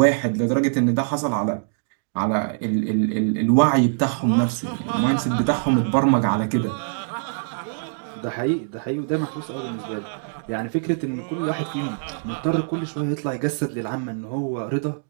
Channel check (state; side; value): silent; left; digital silence